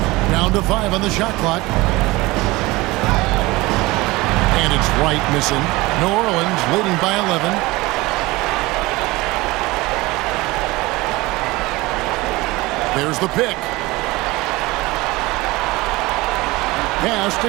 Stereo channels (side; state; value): left; quieter; 21.2 dB